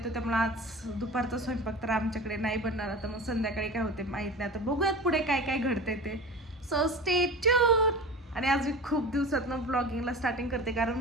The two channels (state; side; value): normal; both; correlation 0.33